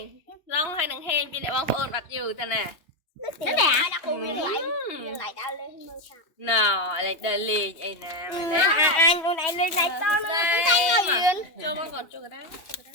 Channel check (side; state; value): right; late; 2.8 ms